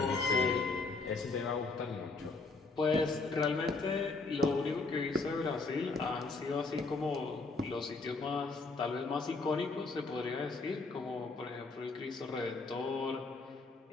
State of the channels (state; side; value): quieter; right; 3.8 dB